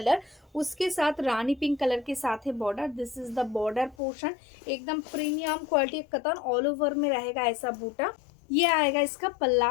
उसके साथ रानी पिंक कलर के साथ है border. This is the border portion, एकदम प्रीमियम क्वालिटी कतन, ऑल ओवर में रहेगा ऐसा बूटा। ये आएगा इसका पल्ला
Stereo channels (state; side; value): drops out; right; at 4.0 s